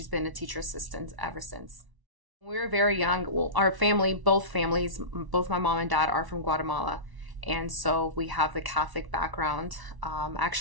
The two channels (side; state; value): left; late; 1.0 ms